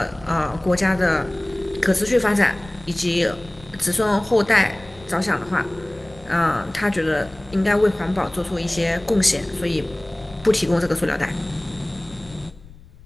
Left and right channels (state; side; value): noise; left; rumble, 22 dB below the sound